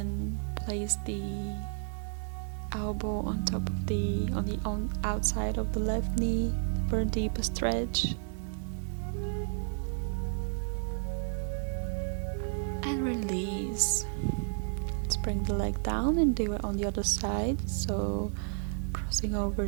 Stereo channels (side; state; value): left; silent; digital silence